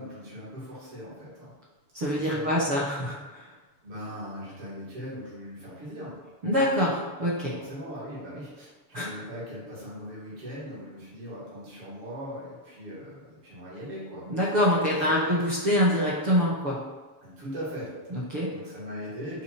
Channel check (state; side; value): late; left; 6.9 ms